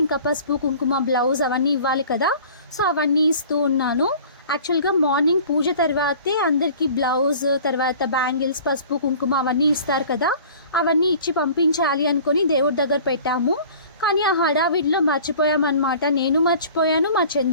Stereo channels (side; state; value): both; inverted; correlation -0.46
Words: ఇంకా పసుపు కుంకుమ బ్లౌజ్ అవన్నీ ఇవ్వాలి కదా. సో అవన్నీ ఇస్తూ ఉన్నాను. యాక్చువల్గా మార్నింగ్ పూజ తర్వాతే అందరికీ బ్లౌజ్ తర్వాత బ్యాంగిల్స్ పసుపు కుంకుమ అవన్నీ ఇస్తారు కదా, అవన్నీ ఇచ్చి పంపించాలి అనుకొని దేవుడి దగ్గర పెట్టాము. కానీ ఆ హడావిడిలో మర్చిపోయామన్నమాట. నేను మర్చిపోయాను, మా